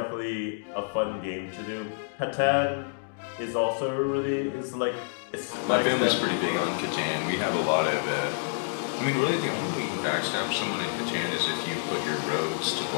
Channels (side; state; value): right; silent; digital silence